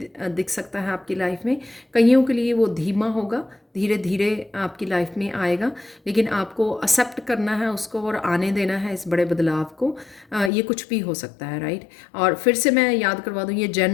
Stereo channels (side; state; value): right; drops out; at 10.5 s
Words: दिख सकता है आपकी लाइफ में। कईयों के लिए वो धीमा होगा, धीरे धीरे आपकी लाइफ में आएगा, लेकिन आपको एक्सेप्ट करना है उसको और आने देना है इस बड़े बदलाव को। ये कुछ भी हो सकता है, राइट। और फिर से मैं याद करवा दूँ, ये